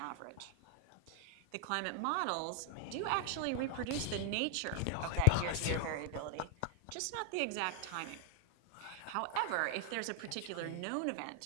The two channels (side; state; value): both; different; correlation 0.00